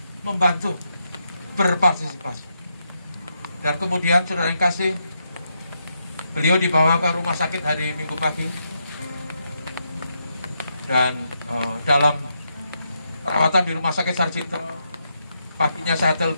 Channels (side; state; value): both; inverted; correlation -0.82